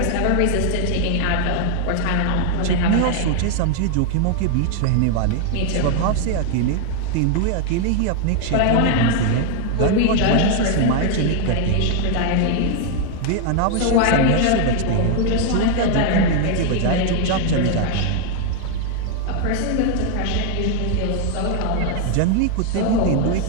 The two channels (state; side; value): different; both; correlation 0.00